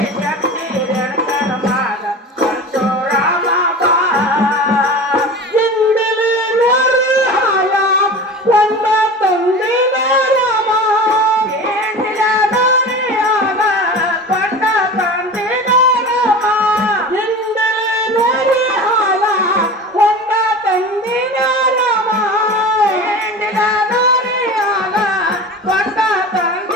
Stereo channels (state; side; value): normal; both; correlation 0.33